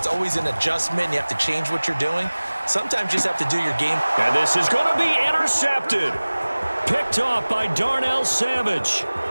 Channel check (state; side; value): inverted; both; correlation -1.00